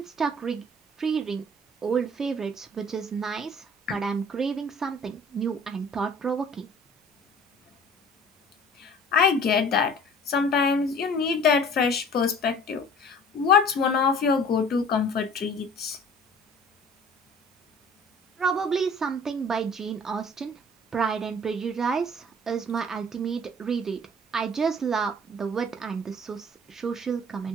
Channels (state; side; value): normal; both; correlation 0.49